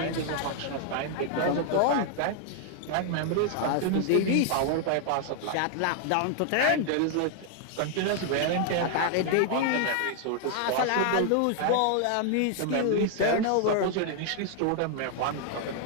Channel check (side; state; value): both; different; correlation 0.00